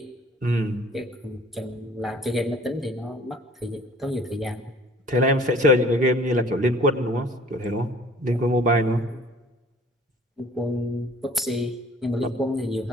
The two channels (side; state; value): both; normal; correlation 0.52